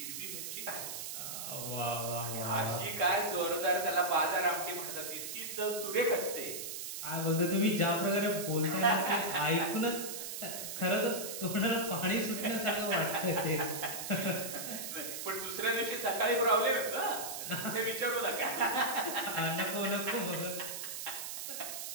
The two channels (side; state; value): right; noise; hiss, 6 dB below the sound